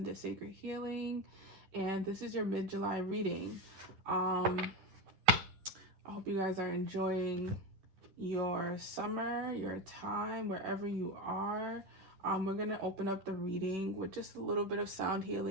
Sacred Healing, and this is your mid-July reading. I hope you guys are enjoying your summer, your time, wherever you are. We're going to open up the reading with just a little bit of sound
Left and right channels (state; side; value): late; left; 10 ms